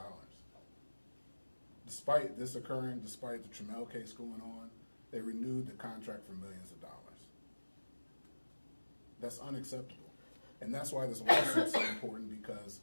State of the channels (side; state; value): both; inverted; correlation -1.00